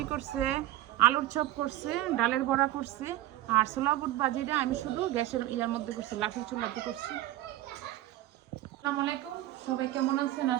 করছে, আলুর চপ করছে, ডালের বড়া করছে। আর ছোলা বুট ভাজিটা আমি শুধু গ্যাসের ইয়ার মধ্যে করছি, লাঠির চুলাতে করছি। আসসালামু আলাইকুম, সবাই কেমন আছেন?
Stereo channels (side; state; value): left; quieter; 15.0 dB